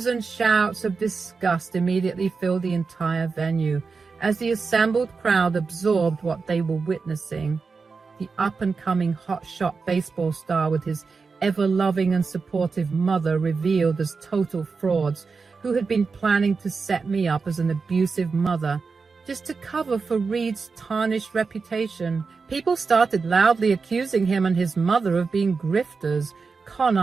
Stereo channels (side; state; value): left; quieter; 4.8 dB